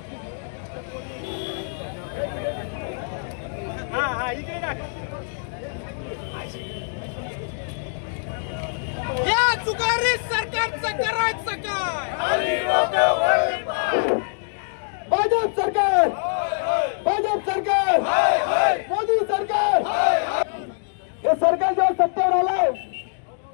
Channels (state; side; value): silent; right; digital silence